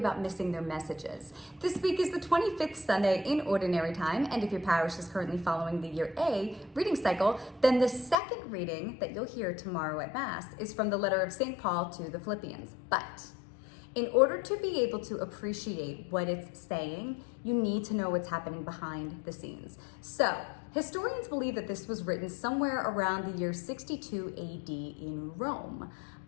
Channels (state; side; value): drops out; right; at 8.2 s